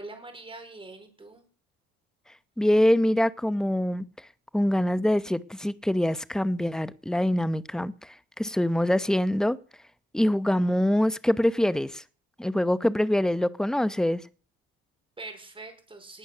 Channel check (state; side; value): normal; both; correlation 0.98